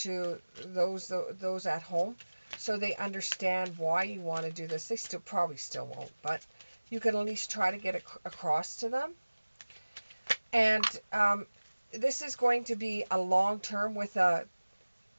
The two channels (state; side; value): inverted; both; correlation -1.00